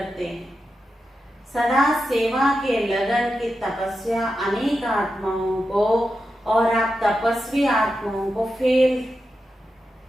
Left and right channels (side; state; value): both; normal; correlation 0.89